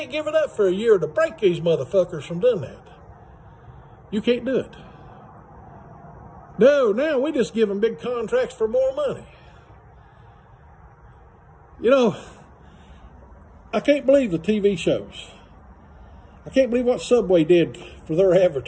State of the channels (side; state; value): both; identical; correlation 1.00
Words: give it up for a year to break these motherfuckers from doing that. You can't do it. No, now we just give them big contracts for more money. You know, I can't believe the TV shows. I can't believe what Subway did for their